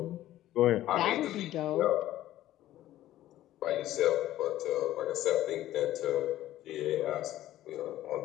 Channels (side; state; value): right; quieter; 13.9 dB